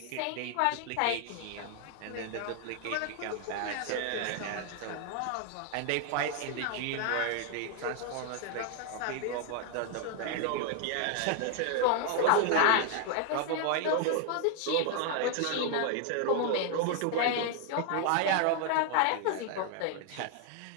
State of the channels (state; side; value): different; both; correlation 0.00